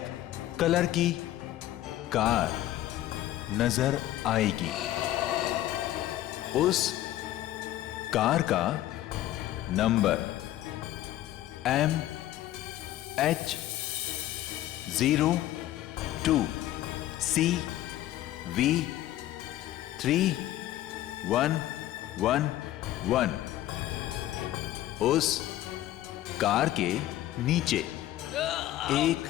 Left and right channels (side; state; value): right; quieter; 14.0 dB